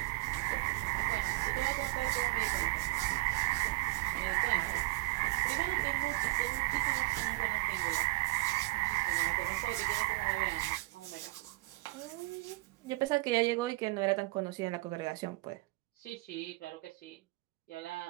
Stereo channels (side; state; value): left; quieter; 23.3 dB